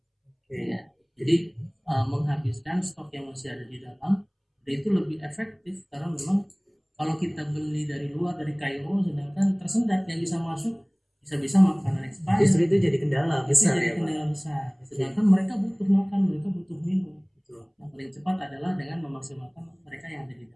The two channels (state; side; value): identical; both; correlation 1.00